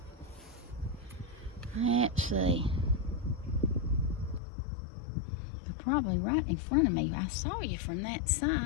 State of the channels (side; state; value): right; drops out; at 4.4 s